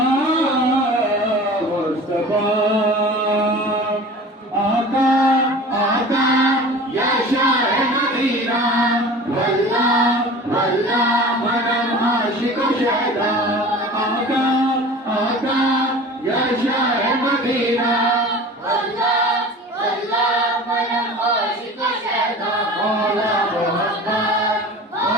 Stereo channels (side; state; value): both; normal; correlation 0.39